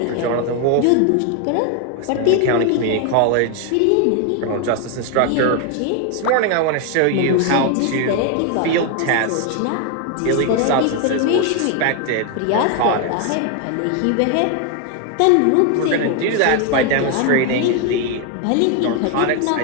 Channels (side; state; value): both; different; correlation 0.01